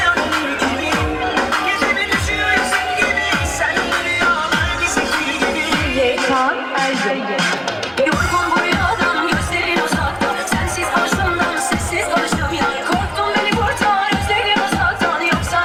gibi. Gecemi düşüyor yüzün gibi. Sen rüyalar gizli gibi. Yekan Ergün. Yorgun bu rüyadan gözlerin uzakta. Sensiz karşımdan sessiz konuştum ya. Korktum beni kurtar özlerim uzaktan. Yoksa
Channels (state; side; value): identical; both; correlation 1.00